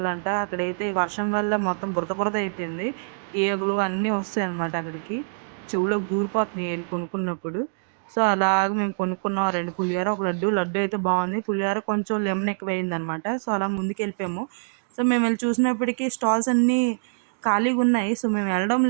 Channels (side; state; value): left; silent; digital silence